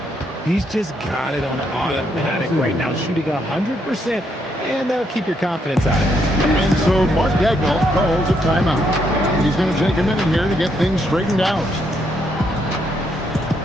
He's just got it on automatic right now, shooting 100%, and that'll keep your confidence out of it. And so Mark Daigneault calls a timeout. He's going to take a minute here to get things straightened out.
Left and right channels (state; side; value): normal; both; correlation 0.75